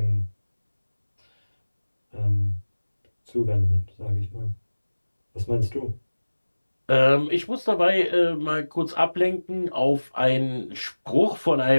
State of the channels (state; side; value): inverted; both; correlation -1.00